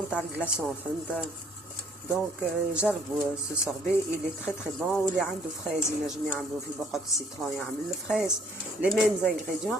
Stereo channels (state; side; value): normal; both; correlation 0.62